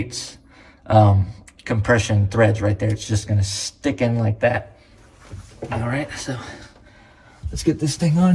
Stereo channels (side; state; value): both; identical; correlation 1.00